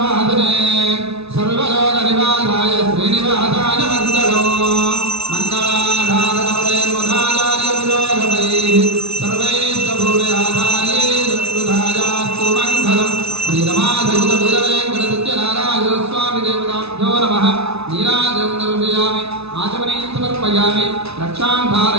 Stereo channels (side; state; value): left; late; 0.79 ms